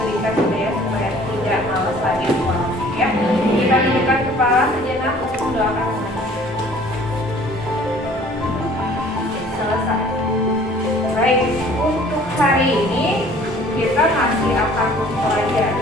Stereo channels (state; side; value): normal; both; correlation 0.52